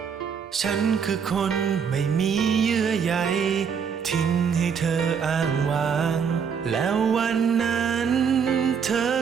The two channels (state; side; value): quieter; left; 6.8 dB